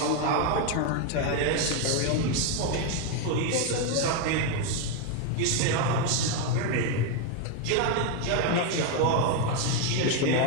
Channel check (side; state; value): both; different; correlation 0.01